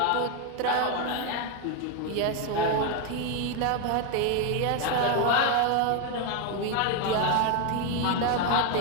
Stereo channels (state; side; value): different; both; correlation 0.01